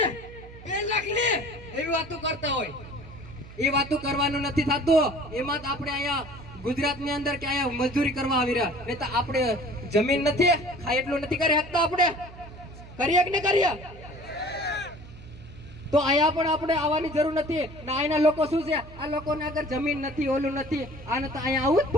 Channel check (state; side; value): noise; right; hum, 17 dB below the sound